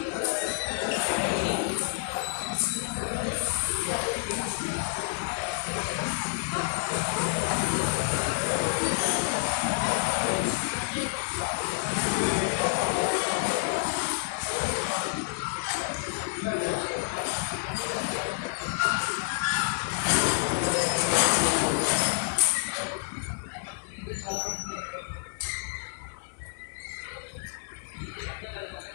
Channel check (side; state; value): right; silent; 56 dB below the other